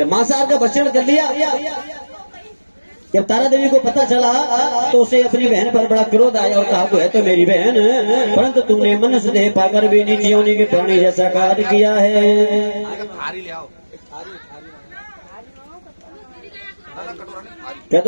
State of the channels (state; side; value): inverted; both; correlation -1.00